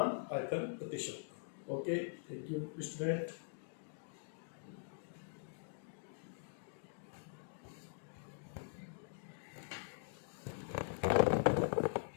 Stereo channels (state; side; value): silent; right; digital silence